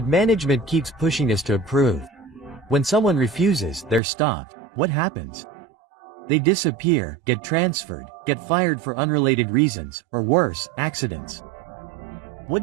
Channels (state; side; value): drops out; left; at 4.0 s